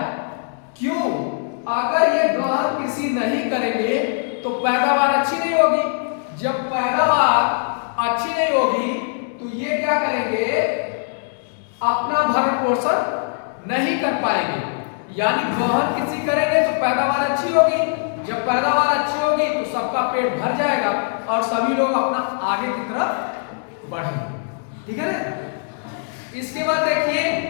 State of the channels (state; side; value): silent; right; 65 dB below the other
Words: क्यों? अगर ये गहन कृषि नहीं करेंगे तो पैदावार अच्छी नहीं होगी। जब पैदावार अच्छी नहीं होगी तो ये क्या करेंगे? अपना भरण पोषण नहीं कर पाएंगे। यानी गहन कृषि करेंगे तो पैदावार अच्छी होगी, जब पैदावार अच्छी होगी तो सबका पेट भर जाएगा और सभी लोग अपना आगे की तरफ बढ़ेंगे, ठीक है ना। इसके बाद देखिए,